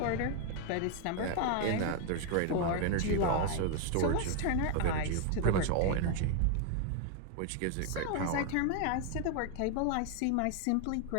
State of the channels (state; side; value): different; both; correlation 0.01